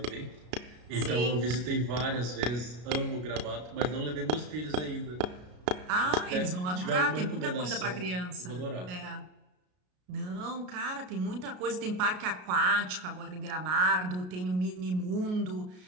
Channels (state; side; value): late; left; 33 ms